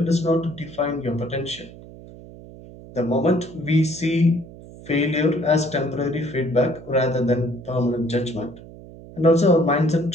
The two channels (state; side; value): noise; right; hum, 18 dB below the sound